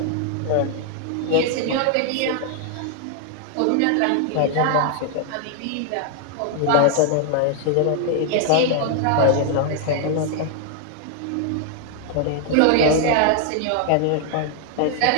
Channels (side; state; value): both; different; correlation 0.00